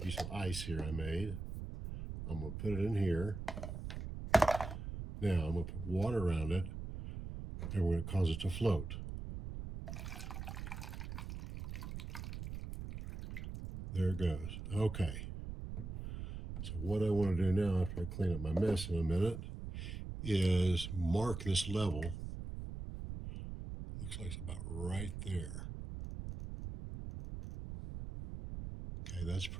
of ice here I made. I'm going to put it in here. Now I'm going to put water around it, and we're going to cause it to float. There it goes. Okay. So what I want to do now, after I clean up my mess in a minute, is mark this level. Looks like it's about right there. Okay, that's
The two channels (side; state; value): right; noise; rumble, 7 dB below the sound